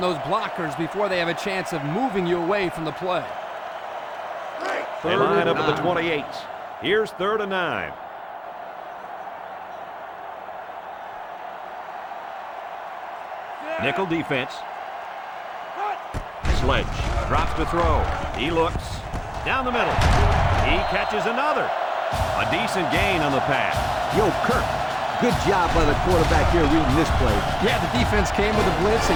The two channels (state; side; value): identical; both; correlation 1.00